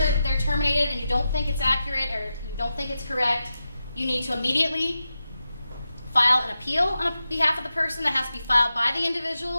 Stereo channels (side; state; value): both; inverted; correlation -0.90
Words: they're terminated and you don't think it's accurate or you don't think it's correct, you need to immediately file an appeal on behalf of the person. That has to be filed by the individual